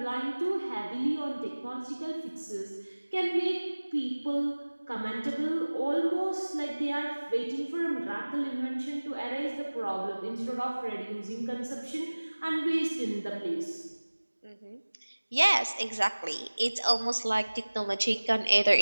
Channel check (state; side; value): inverted; both; correlation -1.00